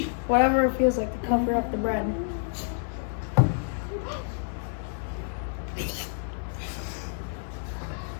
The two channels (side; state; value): right; silent; digital silence